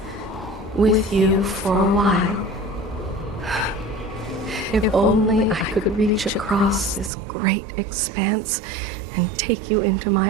with you for a while. If only I could reach across this great expanse and take you into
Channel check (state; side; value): drops out; left; at 7.1 s